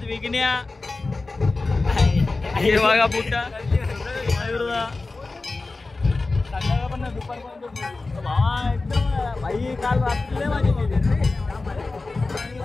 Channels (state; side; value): quieter; right; 3.5 dB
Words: विकण्या हे बघा पुट्टा भाई काल रात्री माझी